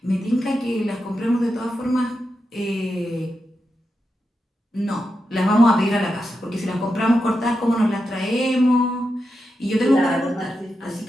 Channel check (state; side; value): normal; both; correlation 0.88